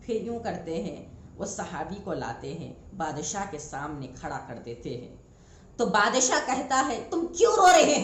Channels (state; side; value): identical; both; correlation 1.00